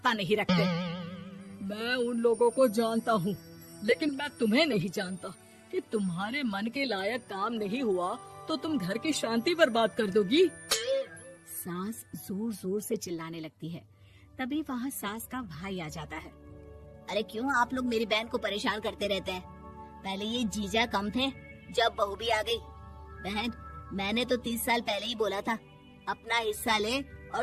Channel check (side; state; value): both; identical; correlation 1.00